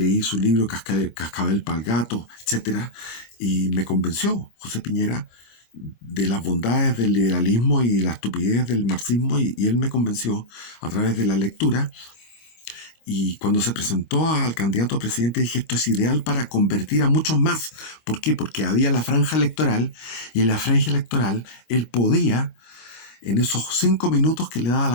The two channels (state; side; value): late; right; 26 ms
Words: su libro Cascabel pa'l Gato, etc. Y me convenció José Piñera de las bondades del liberalismo y la estupidez del marxismo, y él me convenció a través de la lectura. Y cuando se presentó al candidato a presidente, dije, esto es ideal para convertir a muchos más. ¿Por qué? Porque había la franja electoral, y en la franja electoral él podía en esos 5 minutos que le daba